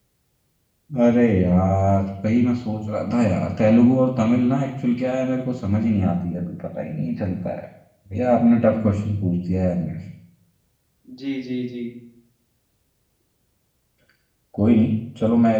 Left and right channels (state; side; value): identical; both; correlation 1.00